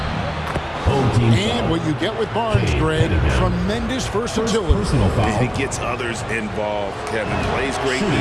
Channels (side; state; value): both; identical; correlation 1.00